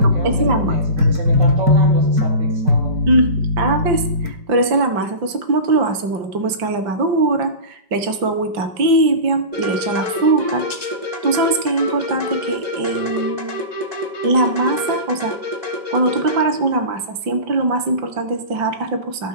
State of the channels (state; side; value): late; left; 5.2 ms